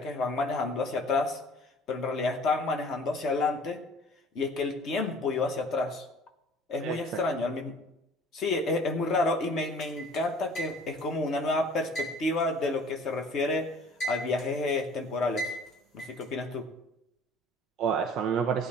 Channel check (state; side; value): normal; both; correlation 0.50